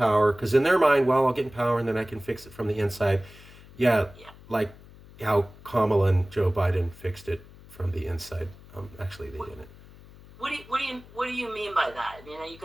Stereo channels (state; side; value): noise; left; hum, 21 dB below the sound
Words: because in their mind, well, I'll get in power and then I can fix it from the inside. Like how Kamala and Joe Biden fixed it from the inside. Actually, they didn't. What do you mean by that? I mean, you